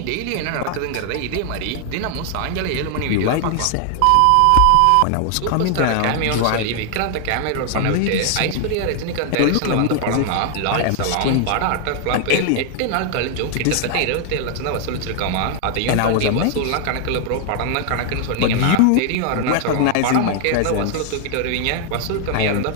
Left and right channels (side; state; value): both; different; correlation 0.00